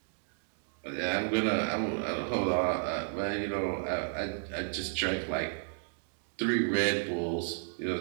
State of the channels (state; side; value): silent; left; digital silence